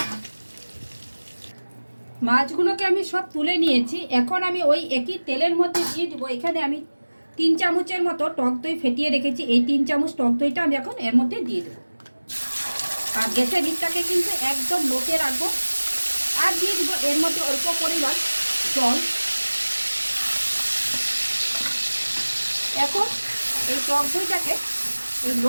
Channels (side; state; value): both; inverted; correlation -1.00